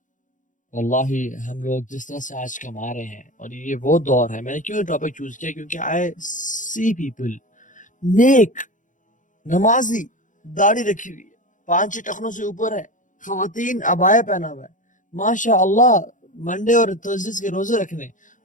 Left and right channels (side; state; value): right; late; 0.37 ms